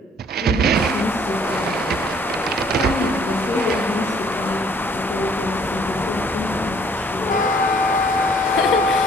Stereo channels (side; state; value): both; normal; correlation 0.60